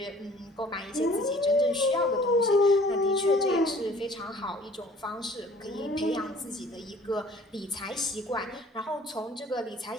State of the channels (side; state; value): both; normal; correlation 0.52